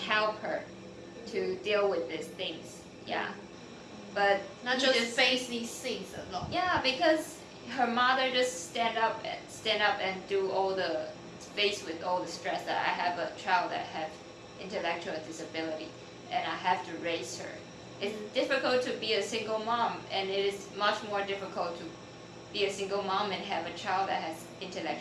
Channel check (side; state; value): both; identical; correlation 1.00